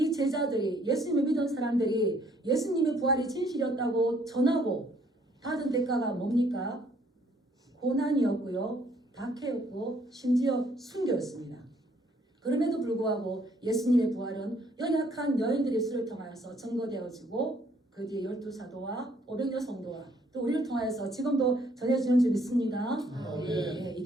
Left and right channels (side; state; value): both; normal; correlation 0.65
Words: 제자들이 예수님을 믿은 사람들이 예수님의 부활이 진실이었다고 전하고 받은 대가가 뭡니까? 고난이었고요. 박해였고 심지어 순교였습니다. 그럼에도 불구하고 예수님의 부활은 연약한 여인들의 수를 통하여서 증거되어지고 그 뒤에 12사도와 500여 성도와 또 우리를 통하여서 지금도 전해지는 줄 믿습니다. 예,